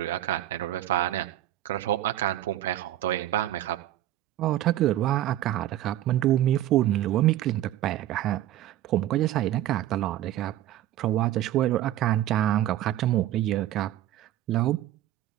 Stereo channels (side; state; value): left; quieter; 13.2 dB